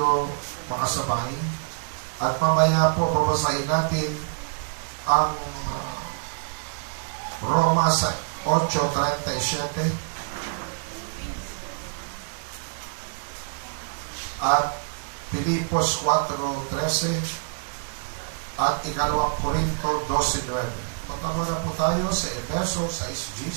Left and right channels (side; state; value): left; silent; digital silence